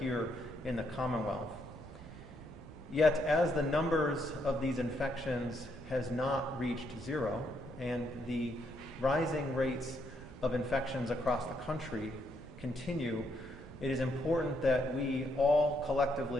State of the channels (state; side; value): noise; right; rumble, 17 dB below the sound